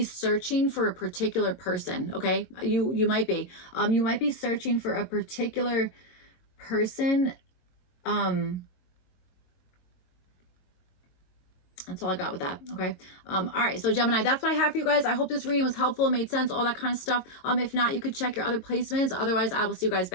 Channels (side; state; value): right; late; 22 ms